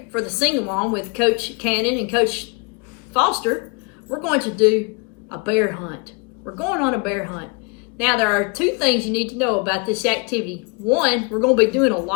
for the sing-along with Coach Cannon and Coach Foster, we're going to do a bear hunt. We're going on a bear hunt. Now, there are two things you need to know about this activity. One, we're going to be doing a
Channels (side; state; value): right; quieter; 32.0 dB